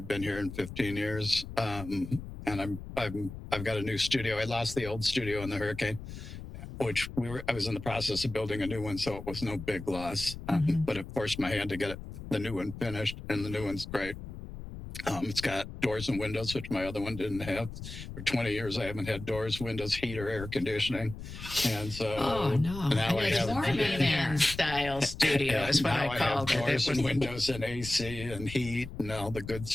been here in 15 years. And I've got a new studio. I lost the old studio in the hurricane, which I was in the process of building a new one. So it was no big loss, but it forced my hand to get the new one finished, and the new one's great. It's got doors and windows, which my other one didn't have. For 20 years, I haven't had doors, windows, heat, or air conditioning. And so now I have a man style studio is what I call it. Doors and windows and AC and heat and all the good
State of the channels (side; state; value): left; noise; rumble, 11 dB below the sound